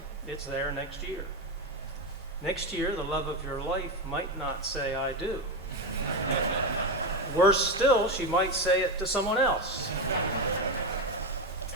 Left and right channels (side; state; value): both; normal; correlation 0.13